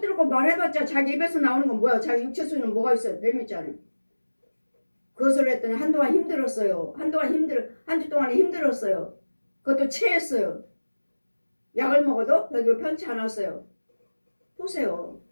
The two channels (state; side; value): inverted; both; correlation -1.00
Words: 들고 말해봤자 자기 입에서 나오는 건 뭐야? 자기 육체 속에는 뭐가 있어요? 뱀 있잖아요. 그것을 했더니 한동안 힘들었어요. 한 주 동안에 힘들었어요. 그것도 체했어요. 약을 먹어도 별로 편치 않았어요. 보세요.